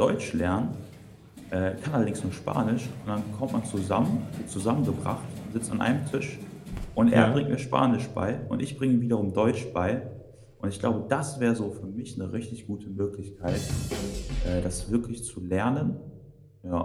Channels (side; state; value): both; identical; correlation 1.00